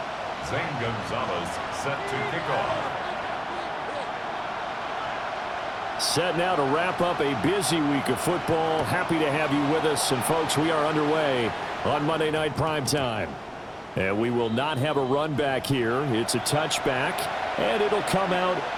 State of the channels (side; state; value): both; identical; correlation 1.00